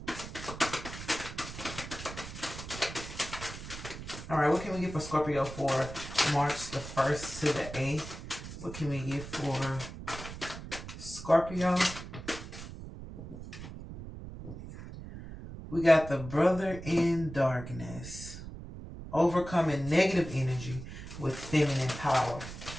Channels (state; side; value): noise; right; rumble, 11 dB below the sound